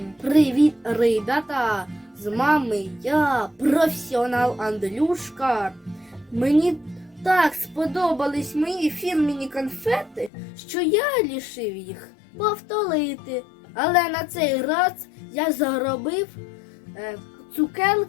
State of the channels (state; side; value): drops out; right; at 10.3 s